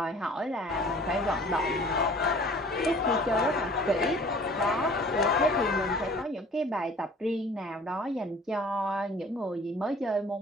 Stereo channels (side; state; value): both; normal; correlation 0.49